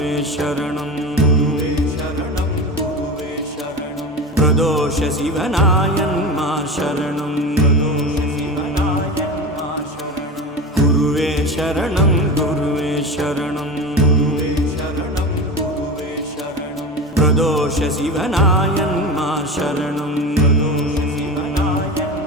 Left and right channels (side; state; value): both; normal; correlation 0.27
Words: சரணம் பிரதோஷ சிவனாயன்மா சரணம் குருவே சரணம் குருவே சரணம் பிரதோஷ சிவனாயன்மா சரணம்